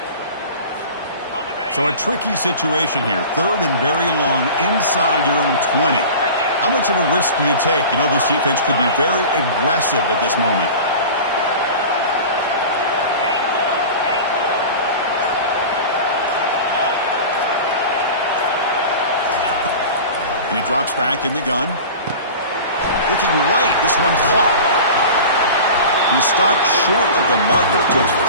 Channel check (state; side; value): inverted; both; correlation -0.36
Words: So a tricky situation here. Third and very long inside your own 20. How much of a risk do you take? You know, this defense could be very aggressive at this moment. And he drops back in the gun. Looking right, this one caught. He stopped short of the marker, so it's